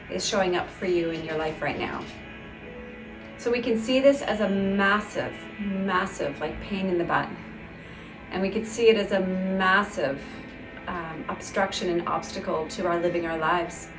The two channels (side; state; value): both; identical; correlation 1.00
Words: is showing up for you in your life right now? So we can see this as a massive like pain in the butt. And we could see it as a massive obstruction and obstacle to our living our lives.